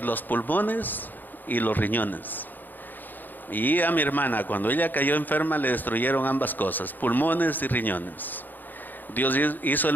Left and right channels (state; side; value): late; right; 0.087 ms